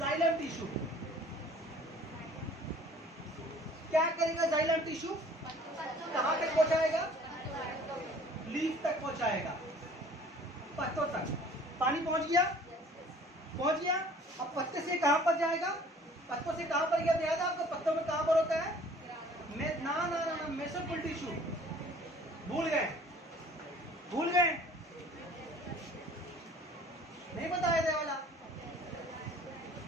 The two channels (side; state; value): both; normal; correlation 0.51